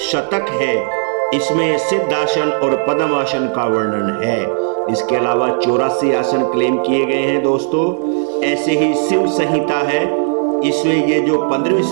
शतक है, इसमें सिद्धासन और पद्मासन का वर्णन है। इसके अलावा 84 आसन क्लेम किए गए हैं दोस्तों। ऐसे ही शिव संहिता है, इसमें ये जो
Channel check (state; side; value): silent; left; 69 dB below the other